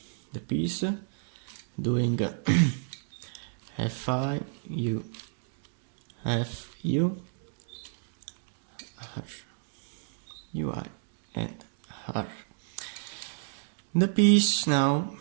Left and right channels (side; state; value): left; silent; digital silence